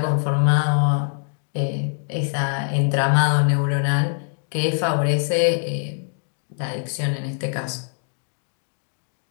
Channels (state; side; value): silent; right; digital silence